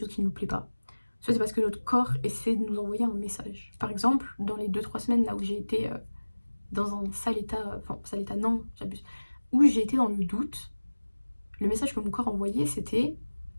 qui ne nous plaît pas, soit c'est parce que notre corps essaie de nous envoyer un message. Par exemple, dans les 2-3 semaines là où j'ai été dans un sale état, enfin sale état non, j'abuse, où j'ai été dans le doute, le message que mon corps envoyait c'était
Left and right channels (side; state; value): both; inverted; correlation -1.00